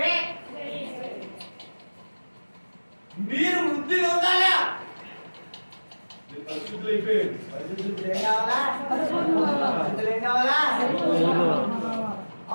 మీరు వృద్ధి పొందాలా. పరిశుద్ధులు అయిపోయారు. పరిశుద్ధులు ఏం కావాలా, పరిశుద్ధులు ఏం కావాలా.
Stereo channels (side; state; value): both; inverted; correlation -1.00